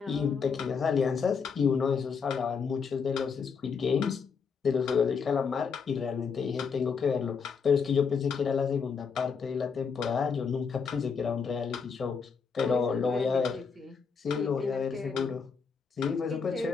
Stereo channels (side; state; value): right; quieter; 5.8 dB